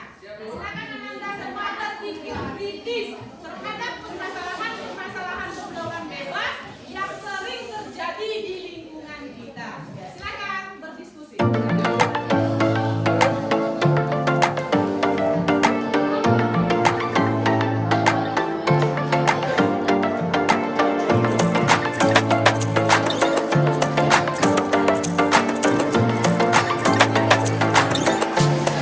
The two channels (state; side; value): identical; both; correlation 1.00